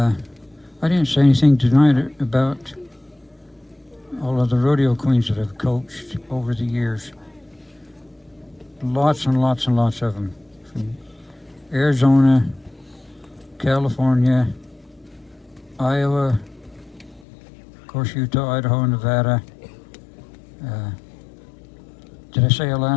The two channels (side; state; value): right; drops out; at 17.2 s